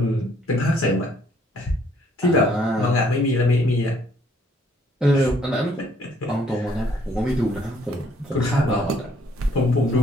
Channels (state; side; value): normal; both; correlation 0.64